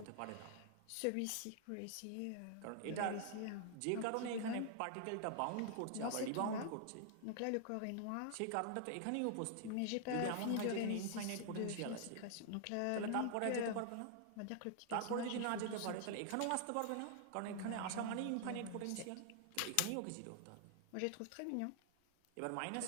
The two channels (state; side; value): different; both; correlation 0.00